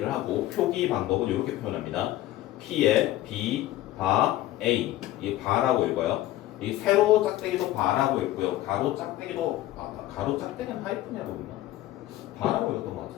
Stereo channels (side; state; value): right; quieter; 15.2 dB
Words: 하고 표기 방법은 이렇게 표현합니다. P의 B, 바, A 이게 바라고 읽어요. 이 세로 짝대기도 바라고 읽고요. 가로 짝대기도 가로 짝대기는 하이픈이라고 읽나? 바라고 읽었던 것